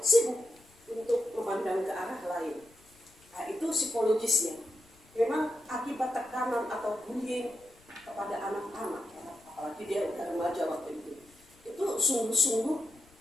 sibuk untuk memandang ke arah lain. Nah, itu psikologisnya. Memang akibat tekanan atau bullying kepada anak-anak, apalagi dia udah remaja waktu itu sungguh-sungguh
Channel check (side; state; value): left; noise; rumble, 28 dB below the sound